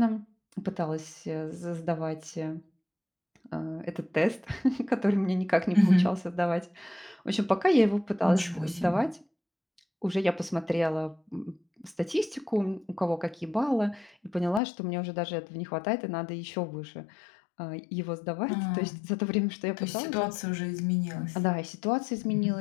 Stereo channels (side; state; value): right; drops out; at 14.6 s